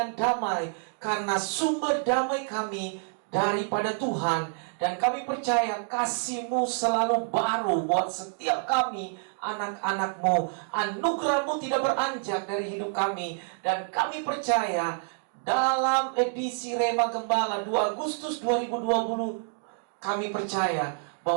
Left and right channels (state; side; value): silent; left; digital silence